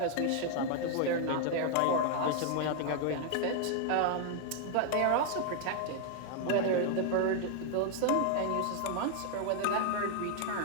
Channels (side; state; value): both; different; correlation 0.00